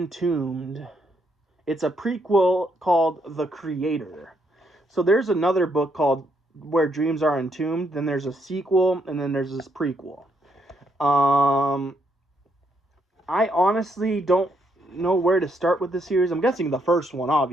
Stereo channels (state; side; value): normal; both; correlation 0.75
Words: It's a prequel called The Creator. So there's another book called Where Dreams Are Entombed. Then there's a sequel, and then there's this prequel. I honestly don't know where to start with the series. I'm guessing the first one,